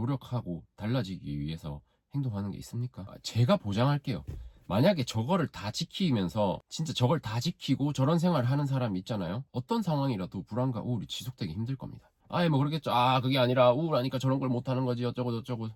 달라지기 위해서 행동하는 게 있습니까? 제가 보장할게요. 만약에 저거를 다 지키면서 진짜 저걸 다 지키고 저런 생활을 하는 사람이 있잖아요. 어떤 상황이라도 불안과 우울이 지속되기 힘들 겁니다. 뭐 그러겠죠. 그게 아니라 우울하니까 저런 걸 못하는 거지 어쩌고 저쩌고.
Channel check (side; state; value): both; identical; correlation 1.00